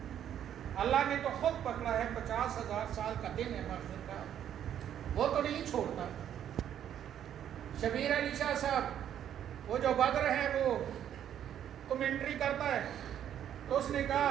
اللہ نے تو خود پکڑا ہے، 50,000 سال کا دن ہے محشر کا، وہ تو نہیں چھوڑتا۔ شبیر علی شاہ صاحب وہ جو بدر ہے وہ کمنٹری کرتا ہے، تو اس نے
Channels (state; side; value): quieter; left; 10.1 dB